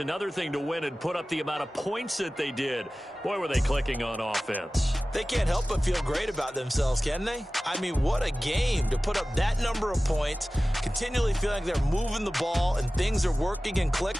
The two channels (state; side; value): normal; both; correlation 0.96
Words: thing to win and put up the amount of points that they did. Boy, were they clicking on offense. They can't help but feel great about themselves, can they? I mean, what a game to put up that number of points, continually feel like they're moving the ball and things are working and